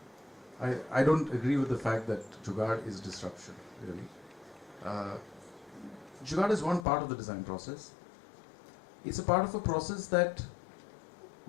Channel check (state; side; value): drops out; right; at 6.9 s